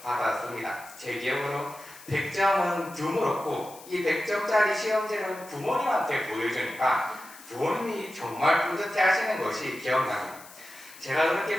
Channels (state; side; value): noise; left; hiss, 19 dB below the sound